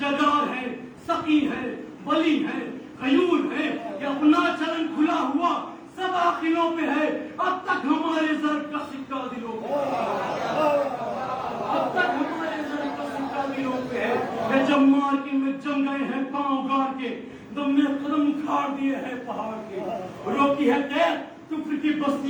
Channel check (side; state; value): both; identical; correlation 1.00